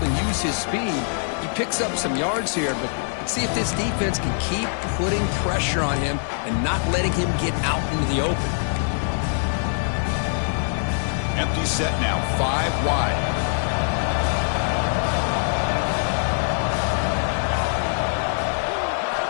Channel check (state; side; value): silent; right; digital silence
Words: and use his speed. He picks up some yards here, but let's see if this defense can keep putting pressure on him and not letting him get out into the open. Empty set now, 5 wide.